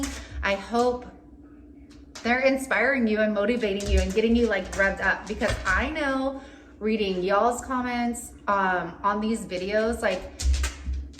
I hope they're inspiring you and motivating you and getting you like revved up, because I know reading y'all's comments on these videos, like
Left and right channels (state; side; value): identical; both; correlation 1.00